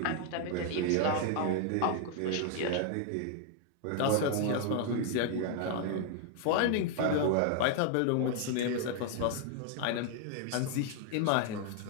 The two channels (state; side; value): different; both; correlation 0.00